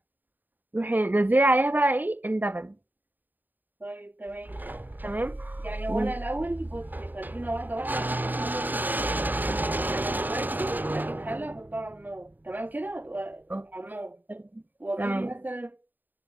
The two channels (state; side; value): late; left; 0.088 ms